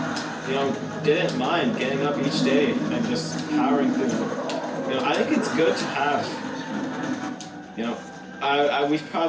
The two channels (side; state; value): both; identical; correlation 1.00